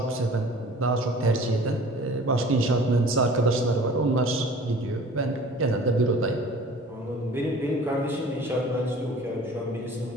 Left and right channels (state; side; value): normal; both; correlation 0.46